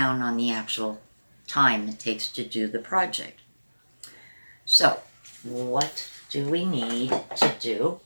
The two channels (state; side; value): inverted; both; correlation -1.00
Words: on the actual time it takes to do the project. So what do we need to do